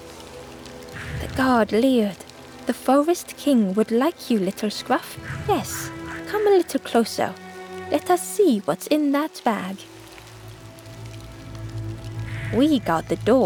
The guard leered. "The Forest King would like you, little scruff. Yes, come a little closer. Let us see what's in that bag." "We guard the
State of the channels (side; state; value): both; identical; correlation 1.00